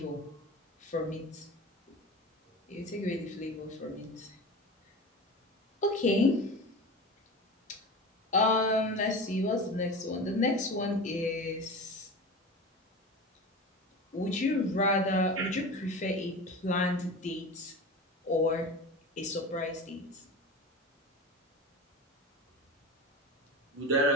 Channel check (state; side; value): normal; both; correlation 0.31